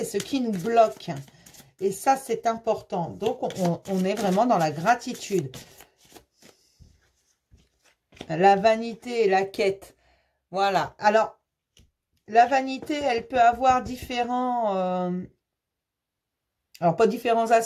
ce qui nous bloque. Et ça, c'est important. Donc, on est vraiment dans la gratitude. La vanité et la quête. Voilà. Alors, la vanité, elle peut avoir différents... alors, pas différents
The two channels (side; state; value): both; identical; correlation 1.00